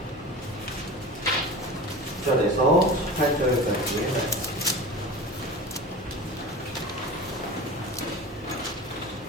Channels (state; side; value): normal; both; correlation 0.33